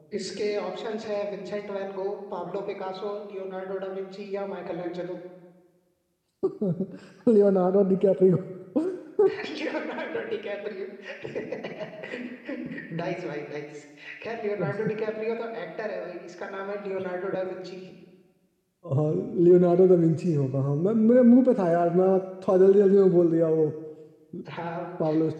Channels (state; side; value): identical; both; correlation 1.00